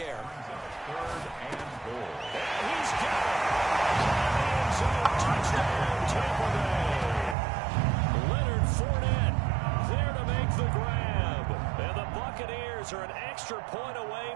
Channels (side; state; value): left; drops out; at 7.4 s